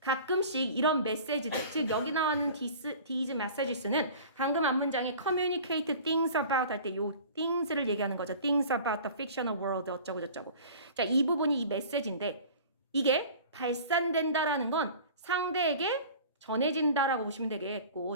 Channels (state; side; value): inverted; both; correlation -0.42